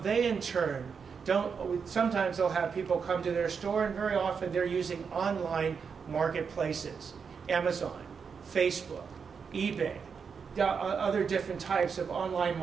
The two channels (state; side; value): quieter; left; 6.0 dB